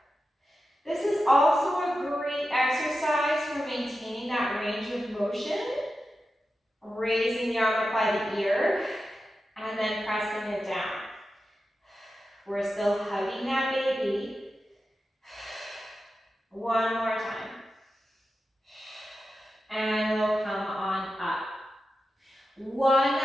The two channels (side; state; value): both; normal; correlation 0.91